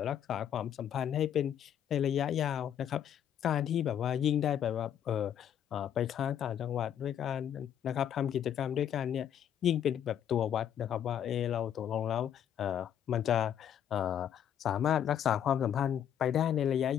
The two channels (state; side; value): quieter; right; 9.6 dB